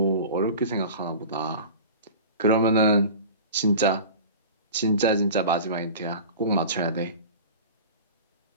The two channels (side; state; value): both; inverted; correlation -0.36